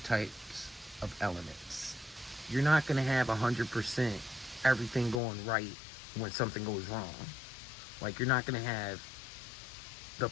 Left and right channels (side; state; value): right; drops out; at 5.2 s